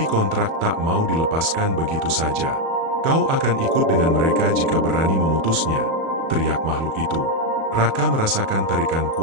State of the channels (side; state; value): left; late; 37 ms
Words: kontrak tak mau dilepaskan begitu saja. "Kau akan ikut dengan mereka jika berani memutusnya," teriak makhluk itu. Raka merasakan tarikan